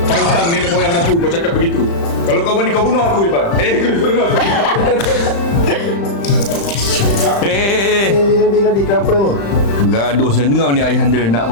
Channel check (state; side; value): late; right; 35 ms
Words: Pantang nenek moyang aku kau cakap begitu. Kalau kau berani kau bunuh aku, Iban. Kau bunuh aku. Nanti kenapa ni? Bergaduh dengar ni ayahanda nak